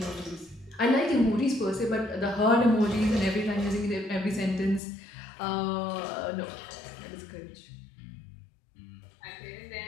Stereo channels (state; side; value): drops out; right; at 4.8 s